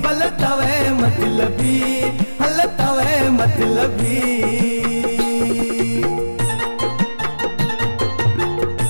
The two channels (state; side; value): inverted; both; correlation -1.00